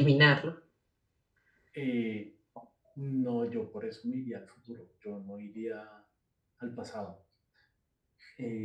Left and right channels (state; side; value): identical; both; correlation 1.00